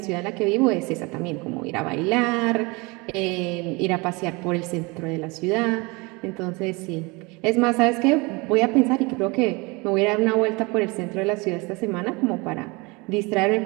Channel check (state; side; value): quieter; left; 26.7 dB